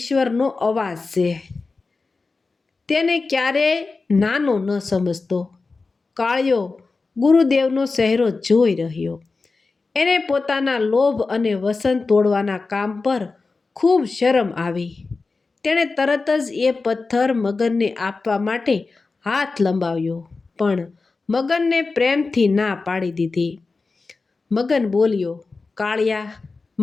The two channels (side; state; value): right; quieter; 4.0 dB